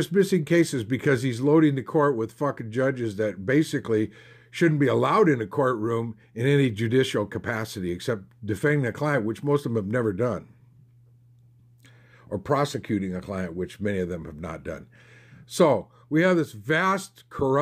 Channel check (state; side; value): identical; both; correlation 1.00